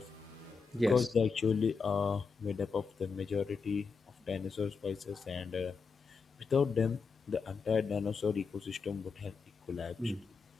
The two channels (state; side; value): quieter; right; 5.1 dB